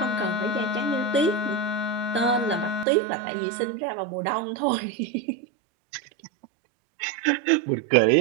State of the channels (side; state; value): left; drops out; at 2.9 s